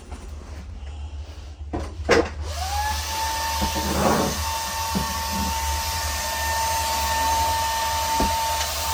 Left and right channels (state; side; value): identical; both; correlation 1.00